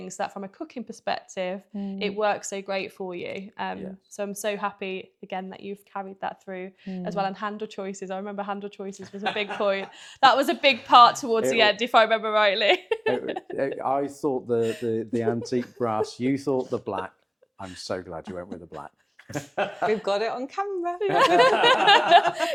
So that from a cooking perspective, it works so great for you. So I'm so happy again that you've carried that through as well. And handle choices, I remember handle choices was a big point. That was a big part towards the end, if I remember rightly. I thought the antique brass, you thought the black. I'm so glad you went with the black. We've got it on camera.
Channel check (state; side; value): identical; both; correlation 1.00